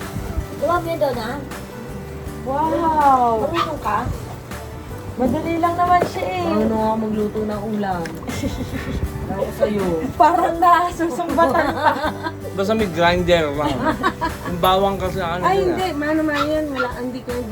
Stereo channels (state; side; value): identical; both; correlation 1.00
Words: Gawa mo yun doon, ha? Wow! Marunong ka? Madali lang naman siya eh. Ano nga magluto ng ulam? Ako sa'yo. Parang nasusumbatan pa. Basta may grinder lang. Yung bawang kasi ano Ay, yun hindi. Mano yan. Wala. Hindi ko yung